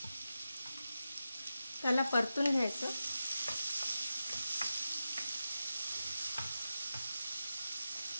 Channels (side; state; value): both; inverted; correlation -0.90